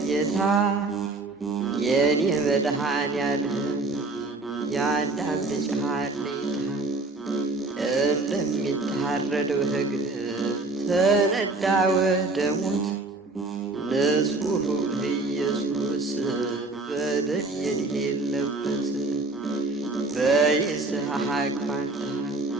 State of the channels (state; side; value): quieter; left; 3.3 dB